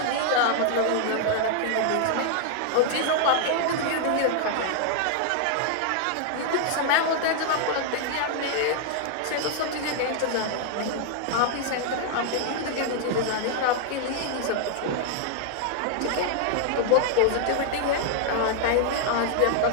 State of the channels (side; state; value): both; different; correlation 0.00